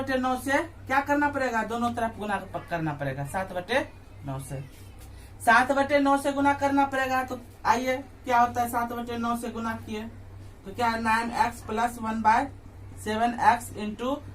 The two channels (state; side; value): identical; both; correlation 1.00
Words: से क्या करना पड़ेगा, दोनों तरफ गुना करना पड़ेगा। 7/9 से 7/9 से गुना करना पड़ेगा। तो आइए क्या होता है 7/9 से गुना किए तो क्या है 9x plus 1/7x into